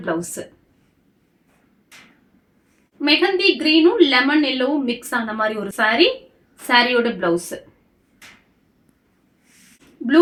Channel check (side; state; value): both; identical; correlation 1.00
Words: பிளவுஸ். மெஹந்தி கிரீனும் லெமன் எல்லோவும் மிக்ஸ் ஆன மாதிரி ஒரு சாரி. சாரியோட பிளவுஸ். ப்ளூ